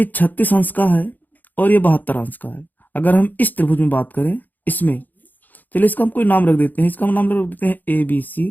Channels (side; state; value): right; late; 0.085 ms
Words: 36 अंश का है और ये 72 अंश का है। अगर हम इस त्रिभुज में बात करें, इसमें चलिए इसका हम कोई नाम रख देते हैं। इसका हम नाम रख देते हैं ABC